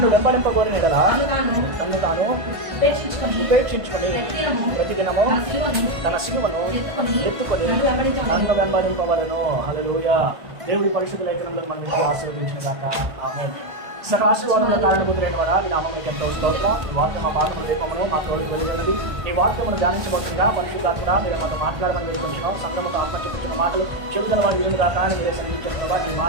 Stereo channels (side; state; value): left; late; 1.5 ms